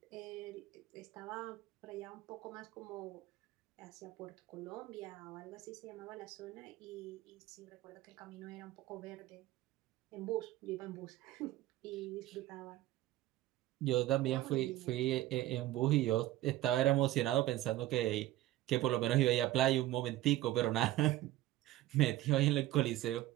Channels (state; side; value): quieter; left; 15.4 dB